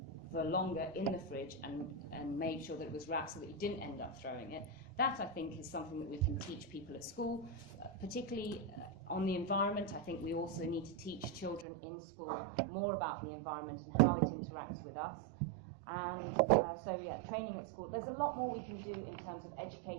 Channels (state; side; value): drops out; left; at 11.7 s